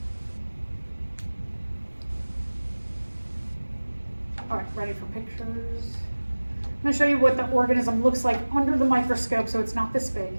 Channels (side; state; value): both; inverted; correlation -1.00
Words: All right, ready for pictures? I'm gonna show you what the organism looks like under the microscope, so it's not this big.